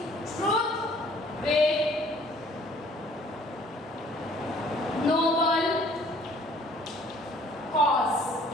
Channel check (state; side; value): normal; both; correlation 0.56